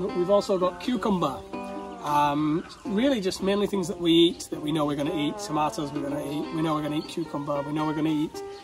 We've also got cucumber. Really just mainly things that we eat, that we know we're going to eat. Tomatoes we're going to eat, we know we're going to eat cucumber, we know we're going to eat.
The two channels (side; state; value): both; identical; correlation 1.00